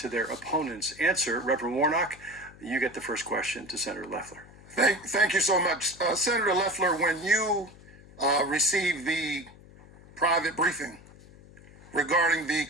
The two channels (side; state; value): left; noise; hum, 22 dB below the sound